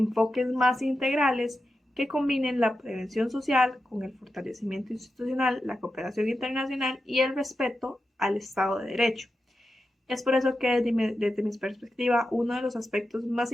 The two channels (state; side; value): normal; both; correlation 0.90